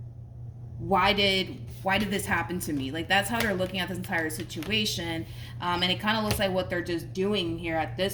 Why did this happen to me? Like, that's how they're looking at this entire situation. And it kind of looks like what they're just doing here at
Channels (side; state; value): both; identical; correlation 1.00